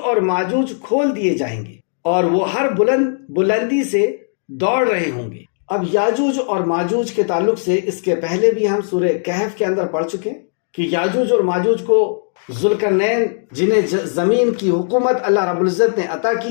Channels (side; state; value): right; silent; digital silence